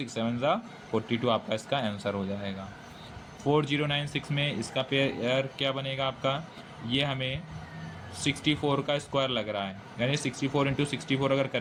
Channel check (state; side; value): identical; both; correlation 1.00